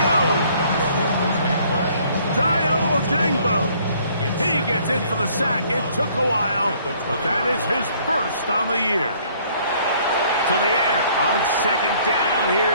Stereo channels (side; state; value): both; inverted; correlation -0.60